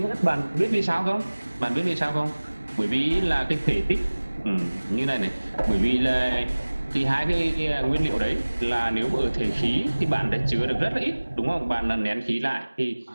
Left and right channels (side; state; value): both; inverted; correlation -1.00